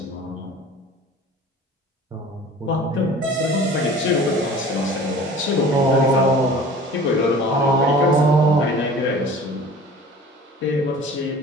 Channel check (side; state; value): both; normal; correlation 0.43